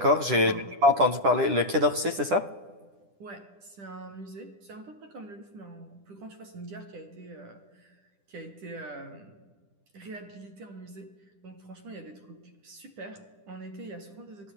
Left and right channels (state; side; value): late; left; 10 ms